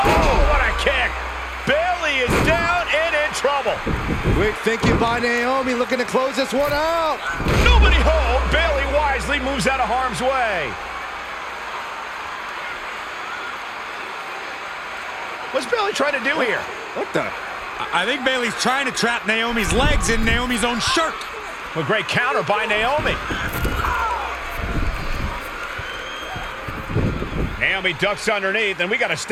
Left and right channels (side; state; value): both; identical; correlation 1.00